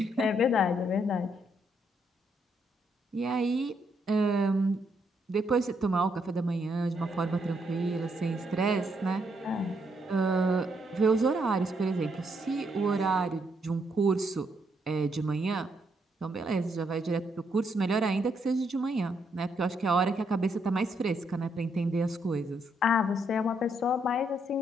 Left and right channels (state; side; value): normal; both; correlation 0.75